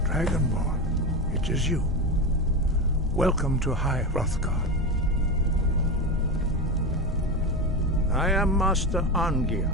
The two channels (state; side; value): normal; both; correlation 0.20